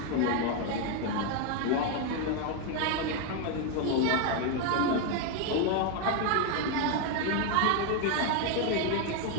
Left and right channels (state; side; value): different; both; correlation 0.01